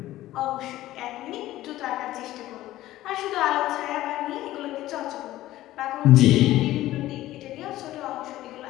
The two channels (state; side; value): quieter; right; 15.3 dB